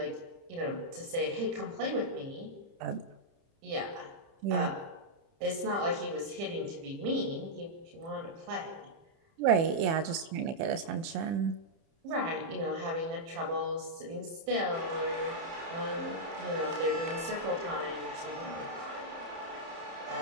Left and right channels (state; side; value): late; left; 30 ms